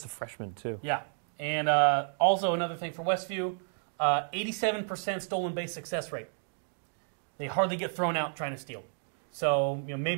a freshman, too. Yeah. And also another thing for Westview, 87% stolen base success rate. They hardly get thrown out trying to steal. So,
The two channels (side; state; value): left; silent; digital silence